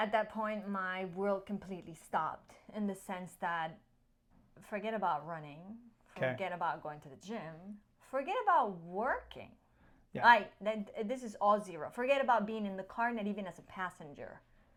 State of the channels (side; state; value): both; identical; correlation 1.00